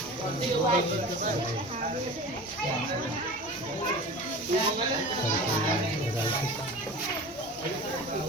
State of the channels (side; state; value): both; normal; correlation 0.36